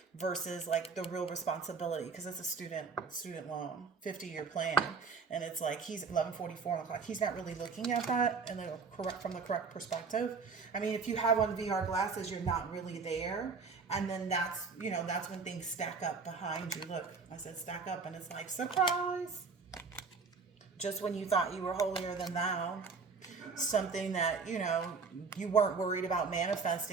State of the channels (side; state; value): left; quieter; 4.9 dB